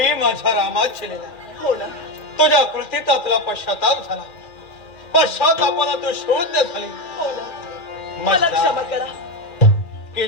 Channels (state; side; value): late; right; 2.4 ms